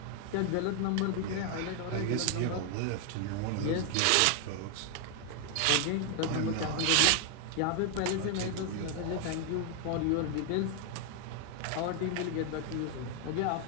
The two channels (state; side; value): different; both; correlation 0.00